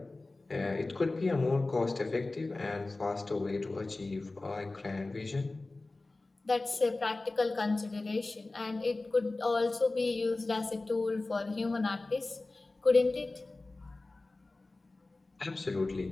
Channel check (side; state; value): right; quieter; 3.2 dB